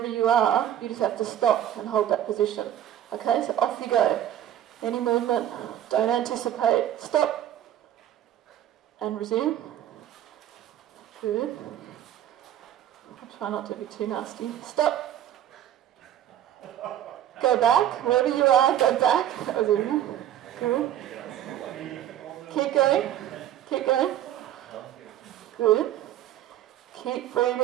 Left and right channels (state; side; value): quieter; left; 11.4 dB